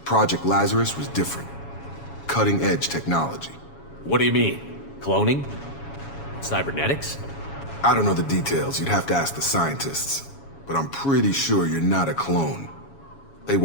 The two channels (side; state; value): right; late; 7.2 ms